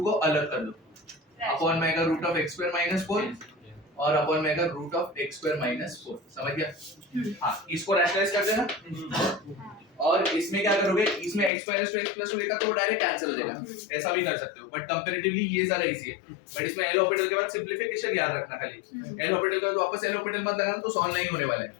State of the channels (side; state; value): right; drops out; at 11.5 s